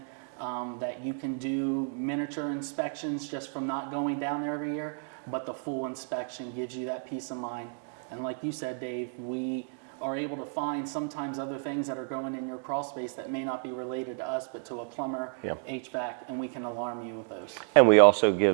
that you can do miniature inspections just from not going down there every year, but the full inspection gives you that peace of mind. And like you said, Dave, we are able to find sometimes other things that are going in your crawl space that may not be related to us, but to a plumber, HVAC, and we can alarm you with those. And we also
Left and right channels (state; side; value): silent; left; 57 dB below the other